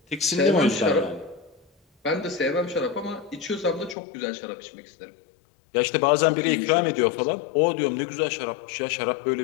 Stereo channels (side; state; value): right; drops out; at 4.0 s